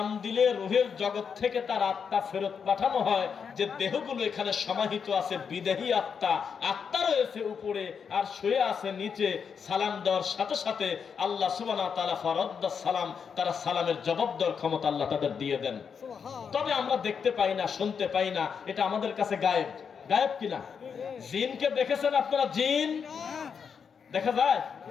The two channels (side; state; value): right; quieter; 6.5 dB